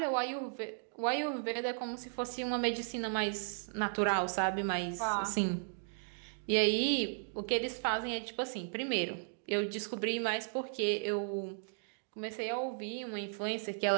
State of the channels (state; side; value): silent; left; digital silence